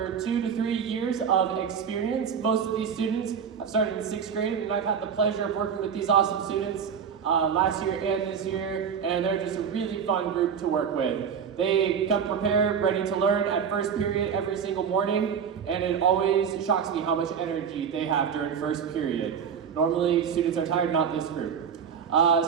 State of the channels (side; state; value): left; quieter; 7.2 dB